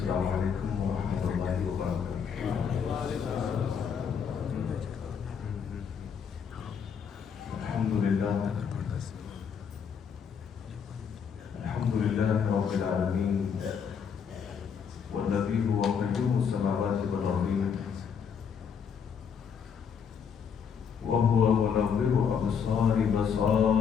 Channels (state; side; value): quieter; right; 7.0 dB